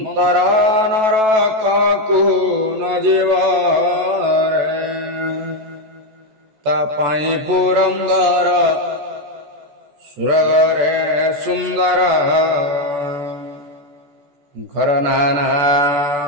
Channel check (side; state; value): left; late; 14 ms